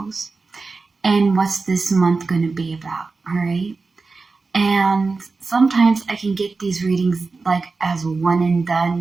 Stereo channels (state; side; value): quieter; left; 4.1 dB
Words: and what's this month going to be about, all right? And sometimes I can get these readings like as one and